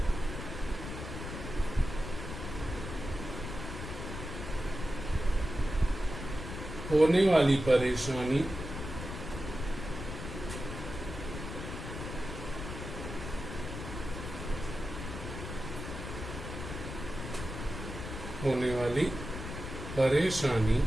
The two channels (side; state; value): left; noise; rumble, 7 dB below the sound